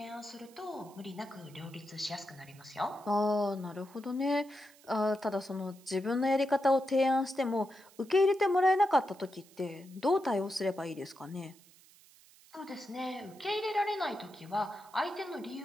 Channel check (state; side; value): noise; right; hiss, 25 dB below the sound